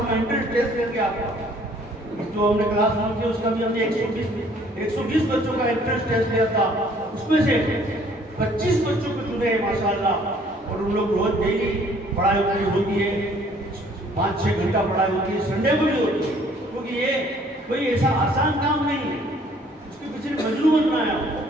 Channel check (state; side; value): normal; both; correlation 0.59